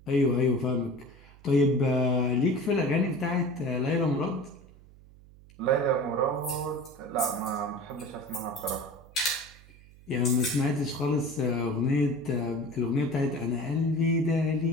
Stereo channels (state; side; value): noise; right; hum, 23 dB below the sound